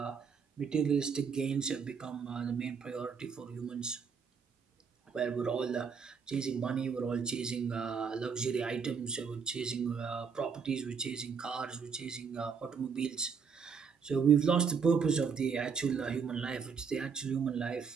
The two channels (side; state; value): left; quieter; 6.1 dB